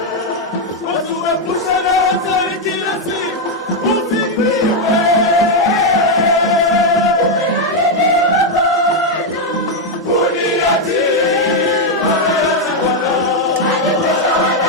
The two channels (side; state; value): both; normal; correlation 0.02